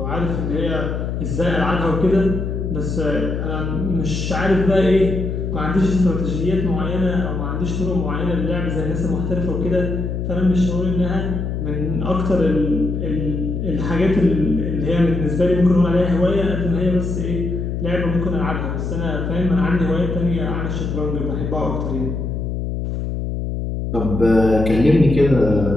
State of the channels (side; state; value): left; noise; hum, 3 dB below the sound